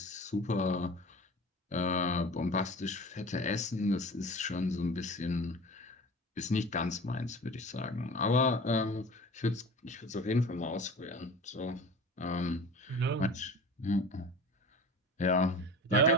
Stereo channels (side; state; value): both; normal; correlation 0.37